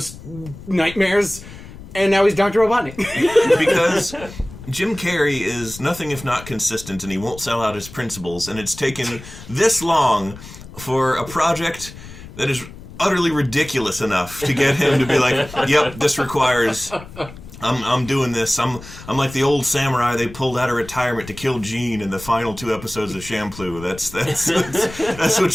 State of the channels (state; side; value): noise; left; rumble, 16 dB below the sound